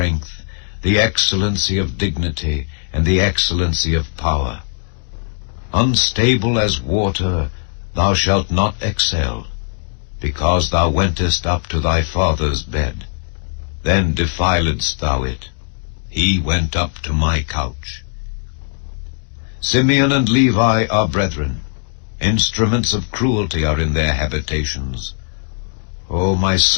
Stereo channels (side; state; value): right; silent; digital silence